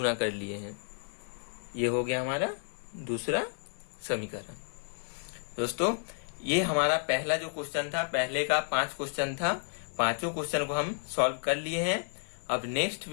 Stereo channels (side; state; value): right; silent; digital silence